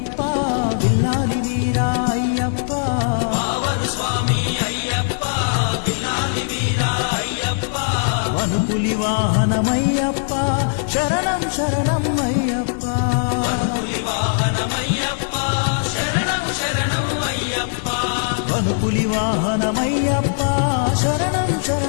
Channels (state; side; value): silent; right; digital silence